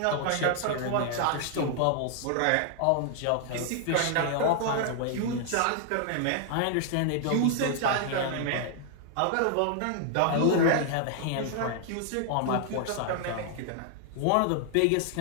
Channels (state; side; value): different; both; correlation 0.00